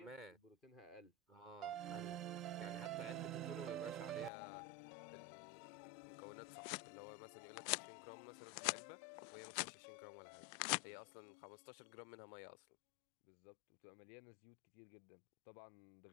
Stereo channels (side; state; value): right; drops out; at 4.3 s